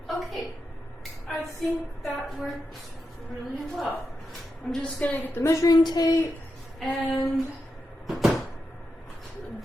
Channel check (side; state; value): both; normal; correlation 0.87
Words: Okay, I think that worked really well. I'm just gonna get the measuring tape and